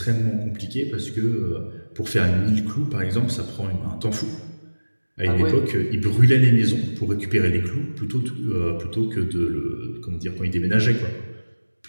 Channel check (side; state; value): both; inverted; correlation -1.00